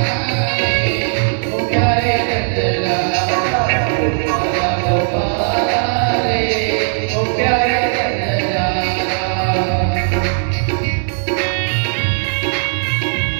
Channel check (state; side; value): silent; left; digital silence